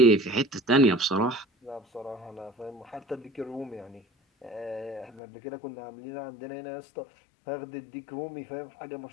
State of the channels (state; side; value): drops out; right; at 5.2 s